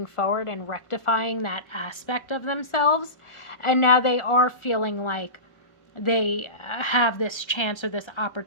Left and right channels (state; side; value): late; right; 1.3 ms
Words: forward and rectifying that aspect of themselves, and now they are feeling like they have this chance or this